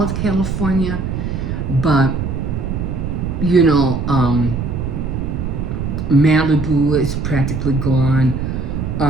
of California, but Malibu is practically gone.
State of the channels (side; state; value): right; noise; rumble, 3 dB below the sound